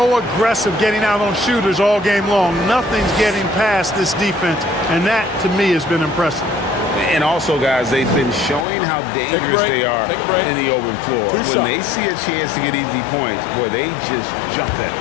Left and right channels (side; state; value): right; drops out; at 8.7 s